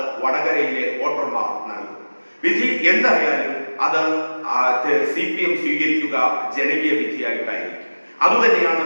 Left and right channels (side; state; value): both; inverted; correlation -1.00